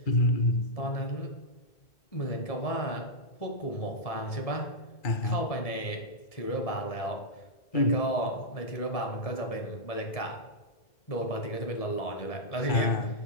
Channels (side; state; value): right; late; 1.7 ms